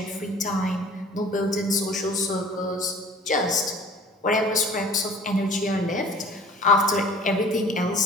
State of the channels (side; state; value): both; normal; correlation 0.48